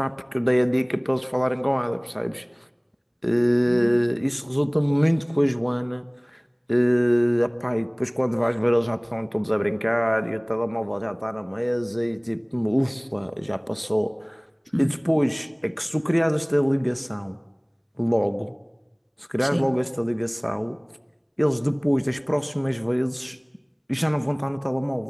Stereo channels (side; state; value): both; identical; correlation 1.00